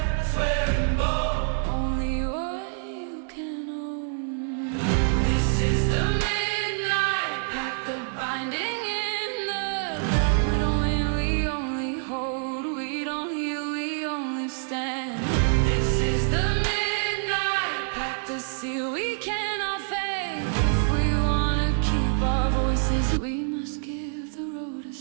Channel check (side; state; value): left; silent; 56 dB below the other